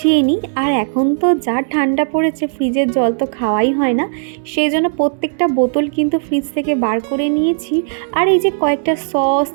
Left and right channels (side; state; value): left; silent; digital silence